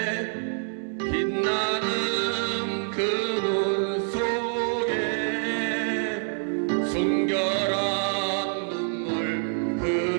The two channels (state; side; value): silent; left; digital silence